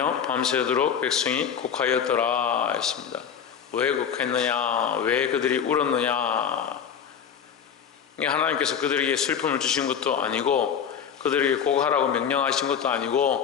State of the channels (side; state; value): right; quieter; 7.8 dB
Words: 밤새도록 백성이 곡하였더라 했습니다. 왜 곡했느냐? 왜 그들이 울었느냐? 하나님께서 그들에게 슬픔을 주신 것도 아니고 그들에게 곡하라고 명령하신 것도